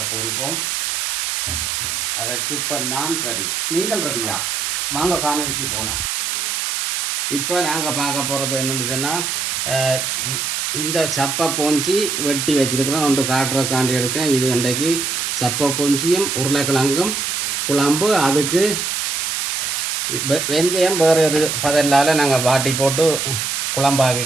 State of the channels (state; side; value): noise; right; hiss, 1 dB below the sound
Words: போன்றோம். அதற்கு இப்போ நான் ரெடி, நீங்கள் ரெடியா? வாங்க காணொலிக்கு போகலாம். இப்போ நாங்கள் பார்க்க போகிறது என்னென்னு சொன்னால், இந்த சப்பை போஞ்சி வெட்டி வச்சுருக்கிறேன். ஒன்று காட்டுறதுக்காண்டி எடுக்கேன். இது இன்றைக்கு சப்பை பொஞ்சியும் உருளைக்கிழங்கும் குழம்பு. அதுக்கு வெந்தயம் வேறு ஒரு பதிலால் நாங்கள் வாட்டி போட்டு